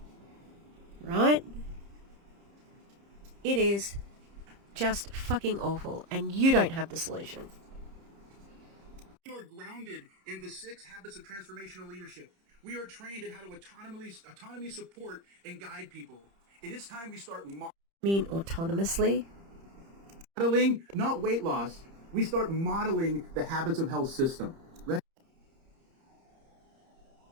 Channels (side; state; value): left; late; 30 ms